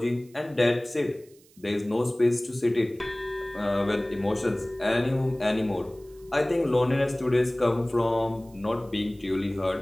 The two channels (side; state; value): right; noise; hiss, 29 dB below the sound